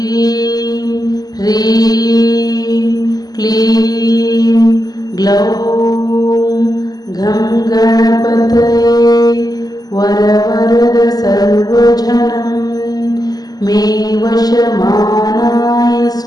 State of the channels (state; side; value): late; right; 0.19 ms